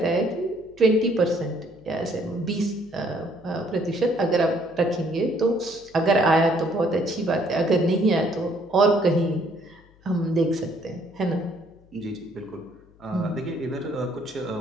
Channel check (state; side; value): noise; left; hum, 28 dB below the sound